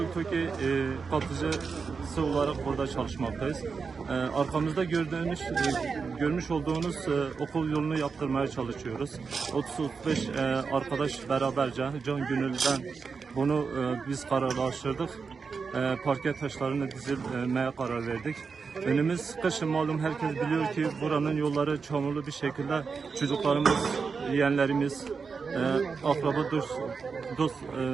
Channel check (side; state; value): left; quieter; 5.2 dB